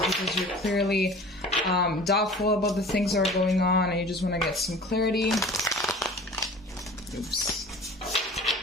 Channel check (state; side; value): normal; both; correlation 0.42